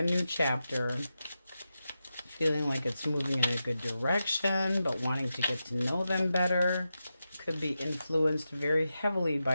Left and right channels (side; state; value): both; inverted; correlation -0.90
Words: new chapter. Feeling like it's moving in a good direction, but wanting to get to know them better. Could be influenced very heavily